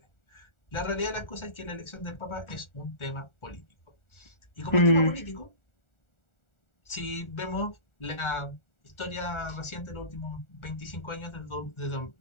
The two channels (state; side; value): late; right; 1.4 ms